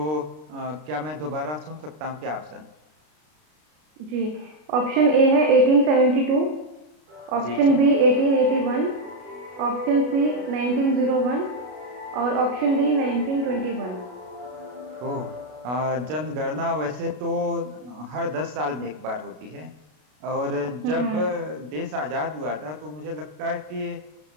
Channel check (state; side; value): late; left; 33 ms